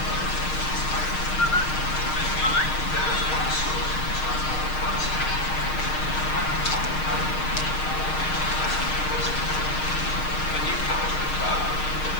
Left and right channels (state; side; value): late; right; 6.5 ms